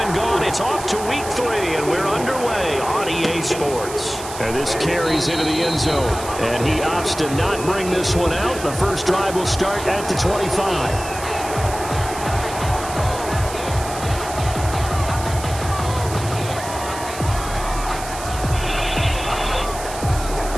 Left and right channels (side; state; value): right; noise; hiss, 11 dB below the sound